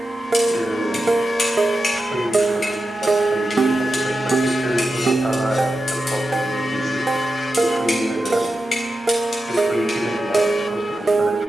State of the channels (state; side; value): normal; both; correlation 0.91